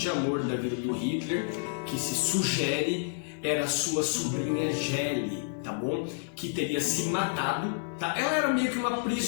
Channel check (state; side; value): silent; right; digital silence